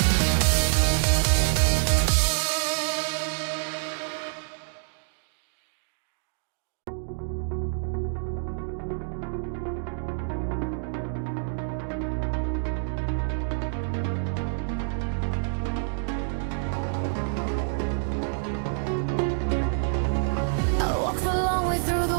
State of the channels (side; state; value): left; silent; digital silence